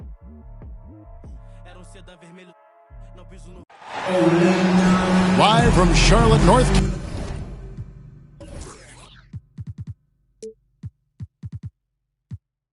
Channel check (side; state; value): both; identical; correlation 1.00